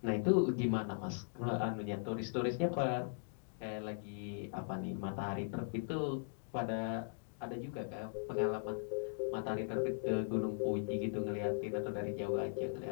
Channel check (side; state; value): right; silent; digital silence